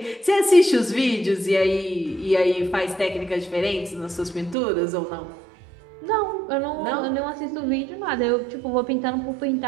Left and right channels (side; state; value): left; drops out; at 4.5 s